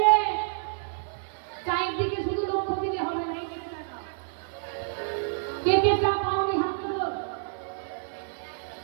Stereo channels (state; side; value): silent; left; 59 dB below the other